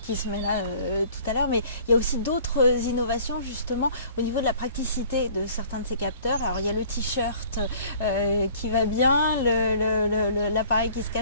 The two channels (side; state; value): both; inverted; correlation -0.52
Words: se met là tout à l'heure, mais il y a aussi d'autres innovations justement au niveau de la praticité de certains de ces capteurs. Alors il y a le t-shirt qui va bien, l'appareil qui se